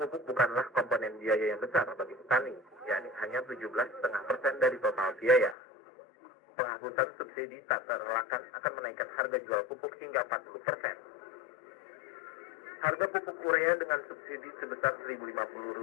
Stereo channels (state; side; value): drops out; right; at 5.6 s